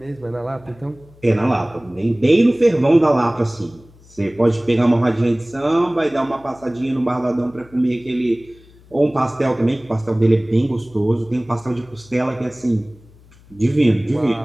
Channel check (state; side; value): noise; left; hum, 26 dB below the sound